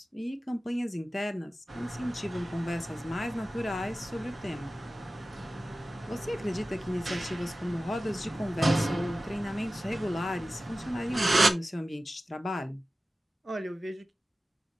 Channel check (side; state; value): both; normal; correlation 0.95